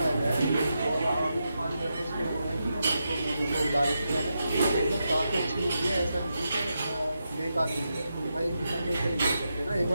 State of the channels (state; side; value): inverted; both; correlation -0.86